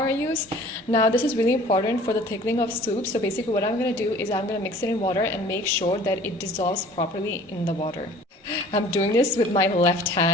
I use. Now this is really important for the thickening of soup. So basically what I'm going to do is I'm going to mix it in water and make sure that it dissolves properly in the water. I'm doing this with my left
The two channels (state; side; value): normal; both; correlation 0.49